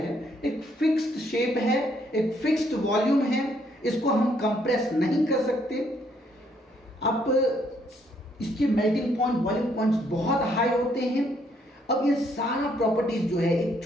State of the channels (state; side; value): normal; both; correlation 0.70